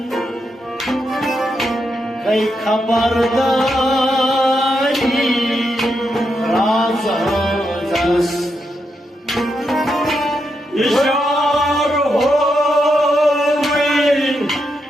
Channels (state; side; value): normal; both; correlation 0.83